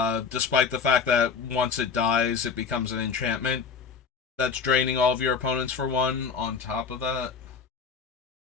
the fact that once it dies, it becomes an enchantment that's draining all of your opponents for 1 on top of that.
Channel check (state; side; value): quieter; right; 5.7 dB